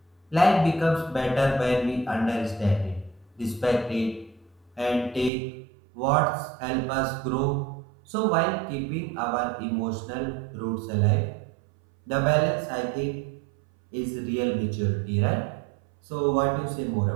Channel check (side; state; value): left; drops out; at 5.3 s